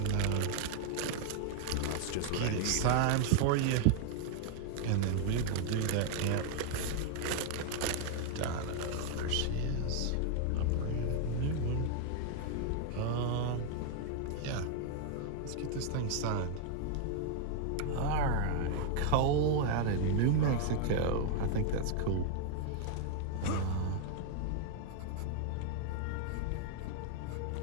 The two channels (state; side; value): different; both; correlation 0.00